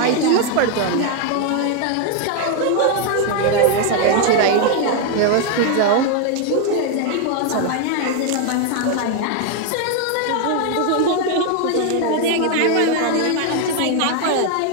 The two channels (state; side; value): different; both; correlation 0.01